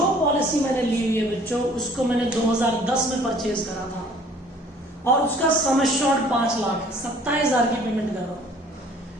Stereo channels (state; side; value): normal; both; correlation 0.54